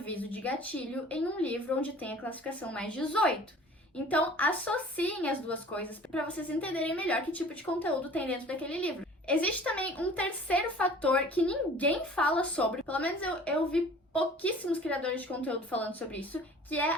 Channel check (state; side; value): normal; both; correlation 0.47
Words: de gatilho em um livro onde tem a classificação mais 18. Então, associem as duas coisas para vocês entenderem melhor que tipo de conteúdo tem dentro daquele livro. Existe também um terceiro fator que ninguém fala sobre, pelo menos eu vi pouquíssimos criadores de conteúdo falando sobre isso, que é